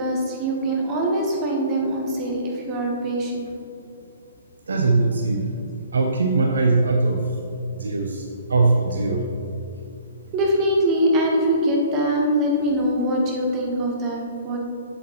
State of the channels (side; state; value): both; inverted; correlation -0.55